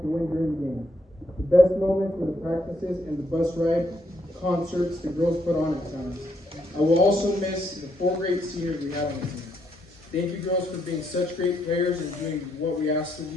to win during the games. The best moments were the practices and the bus ride concerts the girls put on at times. I will also miss the 4 great seniors we had on the team. Thank you girls for being such great players and doing what we asked of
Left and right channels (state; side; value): normal; both; correlation 0.75